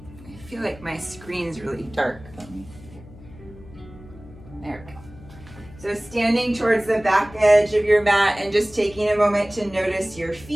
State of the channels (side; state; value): left; noise; hum, 19 dB below the sound